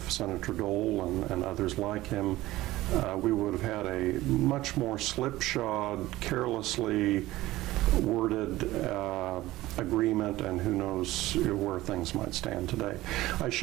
Senator Dole and others like him, we would have had a much more slipshod, carelessly worded agreement, and who knows where things might stand today. I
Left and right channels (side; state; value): left; quieter; 17.1 dB